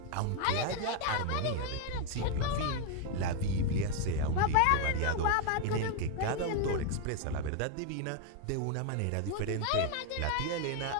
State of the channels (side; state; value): both; different; correlation 0.01